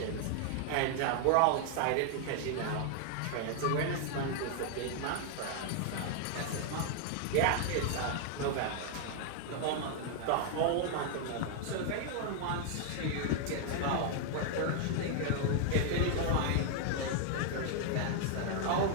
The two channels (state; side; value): different; both; correlation 0.00